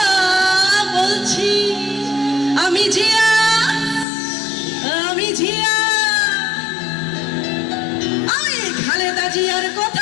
বলছি। আমি জিয়া, আমি জিয়া, আমি খালেদা জিয়ার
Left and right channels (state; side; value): drops out; right; at 4.0 s